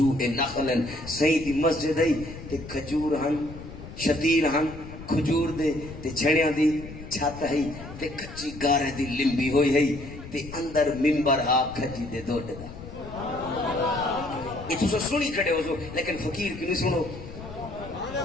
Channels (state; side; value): noise; left; rumble, 13 dB below the sound